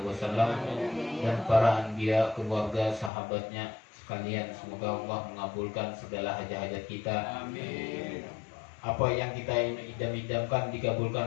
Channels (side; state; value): right; drops out; at 3.1 s